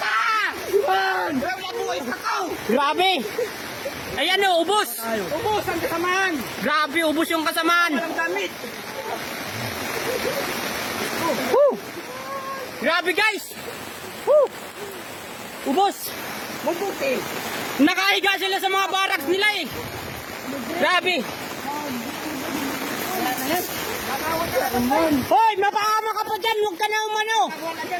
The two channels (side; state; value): both; identical; correlation 1.00